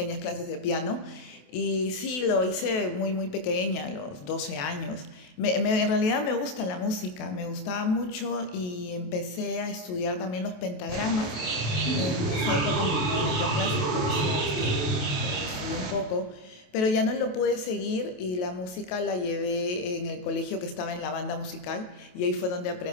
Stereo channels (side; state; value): right; late; 28 ms